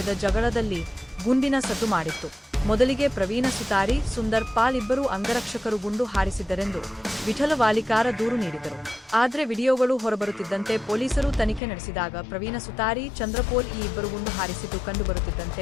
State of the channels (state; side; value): drops out; right; at 11.6 s